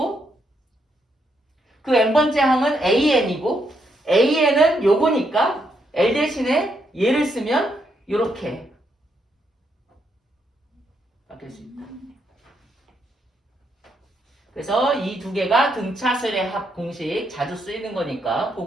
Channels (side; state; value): both; normal; correlation 0.78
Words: 그 n번째 항은 AN이고 AN은 요거니까 L 대신에 얘를 쓰면 이렇게 바뀔 수 있다. 그래서 이 두 개가 등차수열의 합 공식 자주 쓰이는 거니까